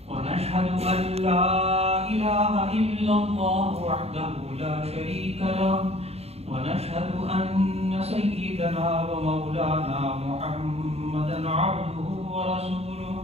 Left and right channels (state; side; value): late; left; 0.30 ms